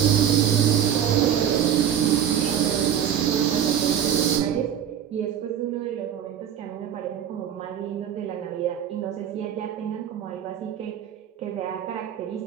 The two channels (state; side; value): quieter; left; 9.4 dB